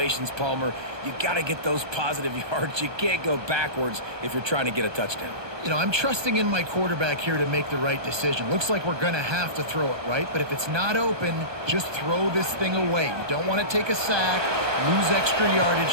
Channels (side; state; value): left; late; 1.2 ms